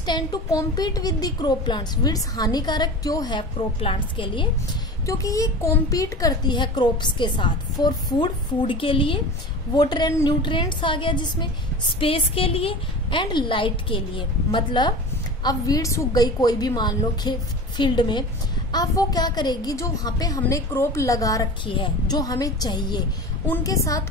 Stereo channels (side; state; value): both; normal; correlation 0.34